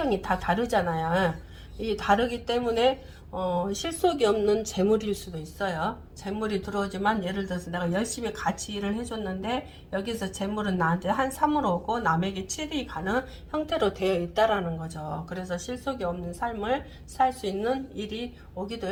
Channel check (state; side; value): identical; both; correlation 1.00